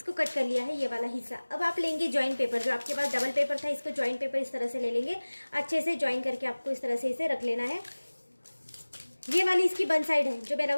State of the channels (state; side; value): inverted; both; correlation -1.00